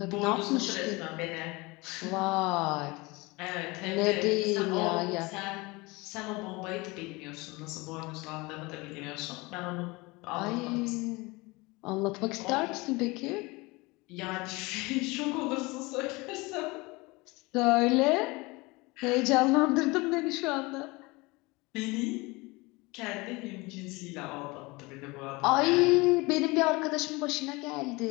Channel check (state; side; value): quieter; right; 24.1 dB